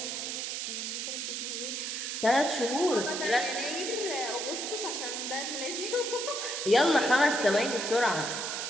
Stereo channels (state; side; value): noise; right; hiss, 3 dB below the sound